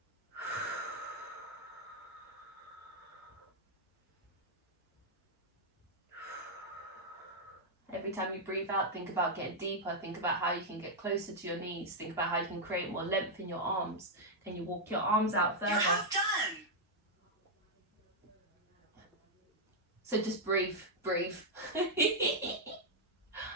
Every time you breathe out, think about getting deeper. Think about how you can get closer to your knees. Think about how you can create more length in your arms. Can you walk your arms out further? You're half done. So just breathe.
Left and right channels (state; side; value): normal; both; correlation -0.03